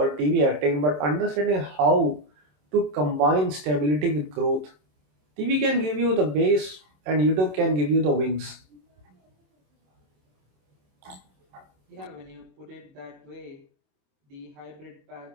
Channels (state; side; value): late; left; 27 ms